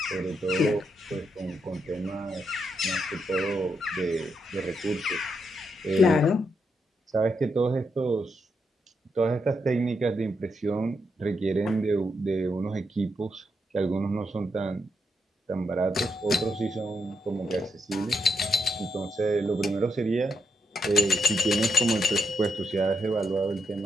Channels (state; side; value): normal; both; correlation 0.82